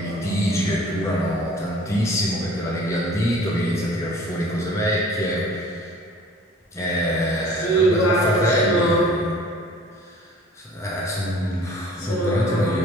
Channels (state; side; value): normal; both; correlation 0.49